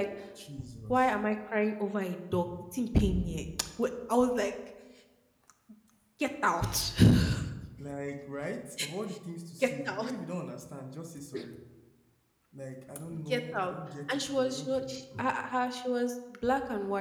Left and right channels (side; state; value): both; identical; correlation 1.00